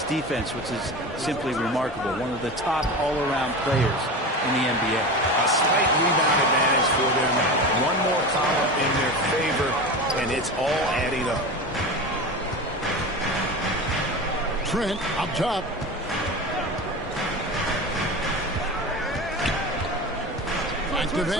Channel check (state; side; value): normal; both; correlation 0.28